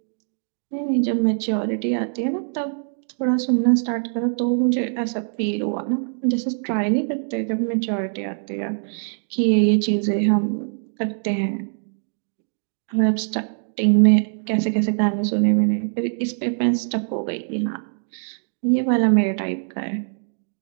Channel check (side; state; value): left; silent; digital silence